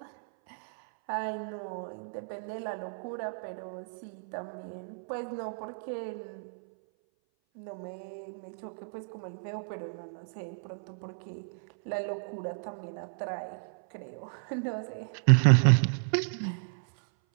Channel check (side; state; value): left; silent; 56 dB below the other